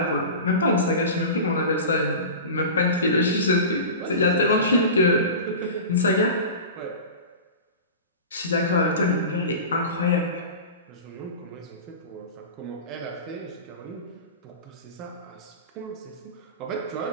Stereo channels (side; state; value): both; inverted; correlation -0.31